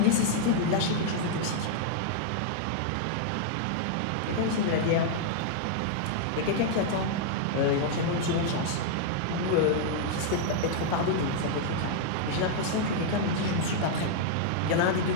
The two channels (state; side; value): different; both; correlation -0.01